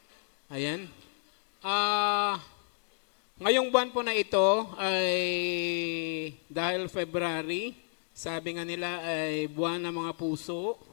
Ayan. Ah, ngayong buwan po na ito ay dahil February, sabi nga nila ay buwan ng mga puso.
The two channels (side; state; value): right; silent; digital silence